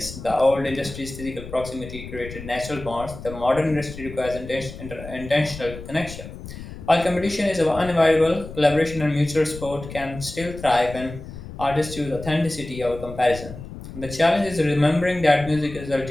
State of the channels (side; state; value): left; noise; rumble, 12 dB below the sound